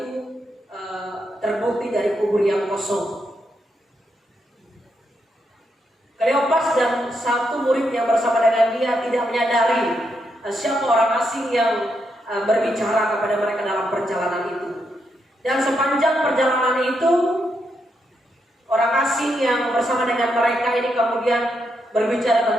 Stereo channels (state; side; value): normal; both; correlation 0.81